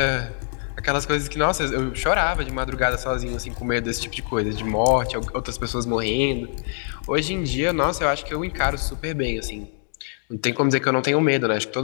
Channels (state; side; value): silent; right; 62 dB below the other